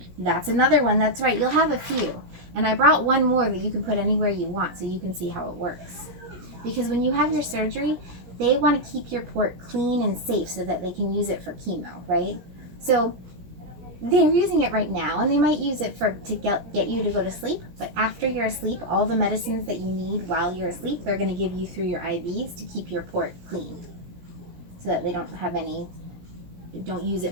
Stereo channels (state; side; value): late; left; 17 ms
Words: That's another one. That's right. You'll have a few. And I brought one more that you can put anywhere you want so you can see how it works. Because when you have your surgery, they want to keep your port clean and safe so that they can use it for chemo, right? So they're using it right now, and they might use it to get you to go to sleep. But after you're asleep, all the medicines that you need while you're asleep, they're going to give you through your IVs to keep your port clean, so that they don't use